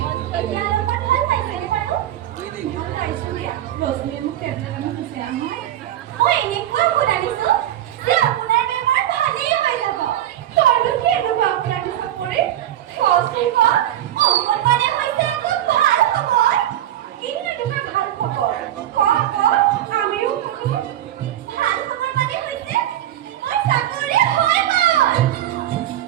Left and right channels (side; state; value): left; quieter; 12.4 dB